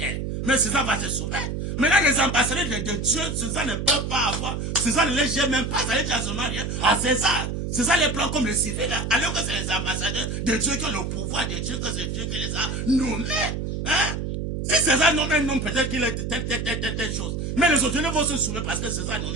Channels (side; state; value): right; noise; hum, 3 dB below the sound